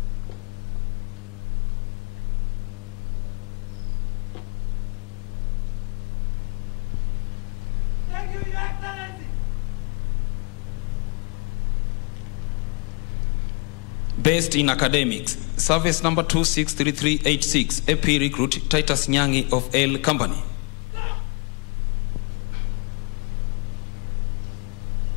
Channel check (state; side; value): quieter; right; 33.7 dB